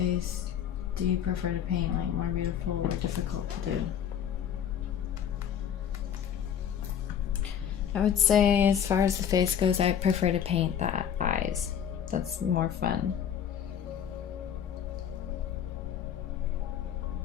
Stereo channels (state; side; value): quieter; right; 8.9 dB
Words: do you prefer to paint, like more beautiful or difficult to do? I would say as far as the face goes, I prefer to paint the eyes. That's more fun.